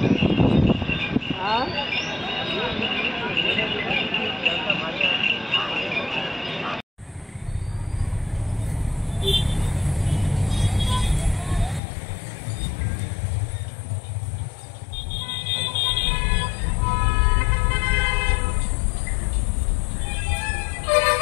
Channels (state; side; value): drops out; right; at 11.8 s